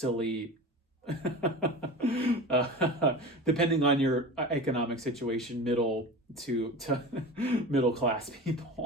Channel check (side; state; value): both; normal; correlation 0.32